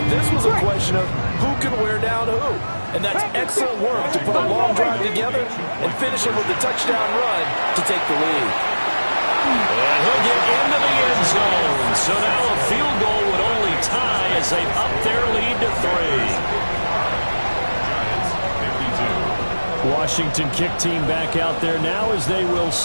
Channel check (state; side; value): inverted; both; correlation -1.00